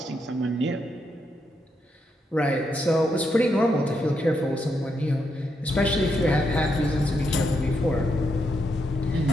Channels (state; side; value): normal; both; correlation 0.81